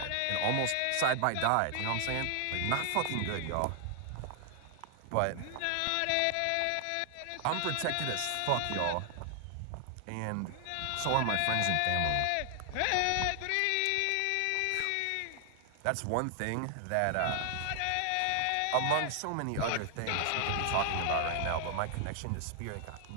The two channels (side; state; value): both; different; correlation 0.00